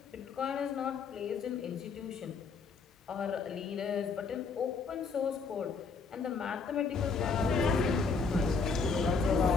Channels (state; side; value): quieter; right; 4.9 dB